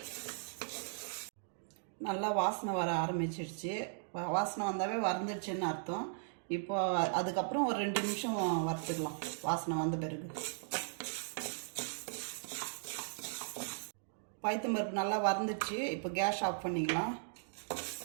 நல்லா வாசனை வர ஆரம்பிச்சிடுச்சு. வாசனை வந்தாவே வறந்துடுச்சுன்னு அர்த்தம். இப்போ அதுக்கப்புறம் ஒரு 2 நிமிஷம் வறுத்துக்கலாம். வாசனை வந்த பிறகு பைத்தம்பருப்பு நல்லா வறந்துச்சு. இப்போ கேஸ் ஆஃப் பண்ணிக்கலாம்.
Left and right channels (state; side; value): silent; left; digital silence